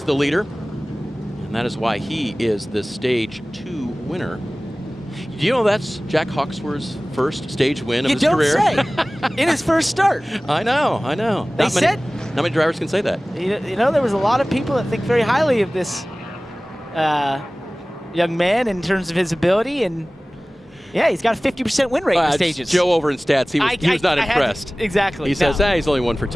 the leader, and that is why he is the Stage 2 winner. Do you know that's Jack Hawksworth's first stage win of his career? You don't say. In his first start. I know, I know. Not many drivers can say that. You know, there was a lot of people that think very highly of this young man in terms of his ability, and yeah, he's got a 50% win rate in the stages. Joe over in stats, he was not impressed. Exactly. He says, he's only 1 for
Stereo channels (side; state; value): both; normal; correlation 0.98